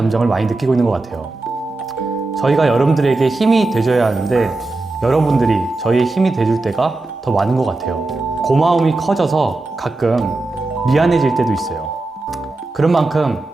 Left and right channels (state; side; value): quieter; left; 3.1 dB